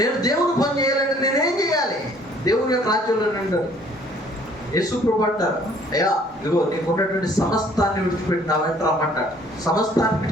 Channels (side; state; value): both; normal; correlation 0.58